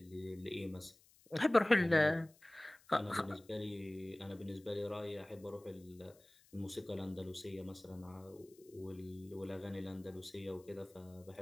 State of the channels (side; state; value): left; noise; hiss, 28 dB below the sound